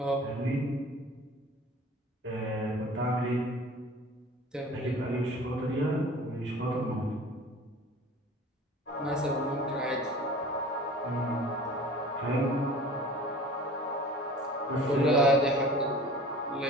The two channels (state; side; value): normal; both; correlation 0.43